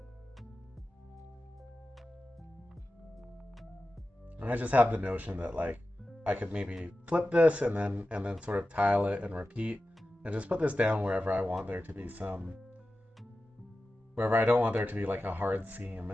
And I just have the notion that like I could maybe flip this and then sort of tile it and repeat and just put this down wherever I want there to be wherever I don't want there to be like a hard seam,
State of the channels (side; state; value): both; normal; correlation 0.93